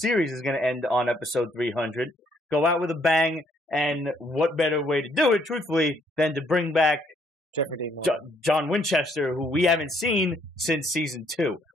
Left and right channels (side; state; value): both; normal; correlation 0.67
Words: is gonna end on episode 300. Go out with a bang. And what better way to do it, truthfully, than to bring back Jeffrey Dean John Winchester, who we haven't seen since season 2.